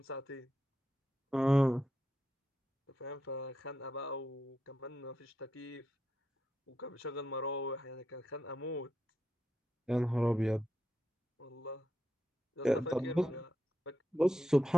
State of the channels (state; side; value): normal; both; correlation 0.85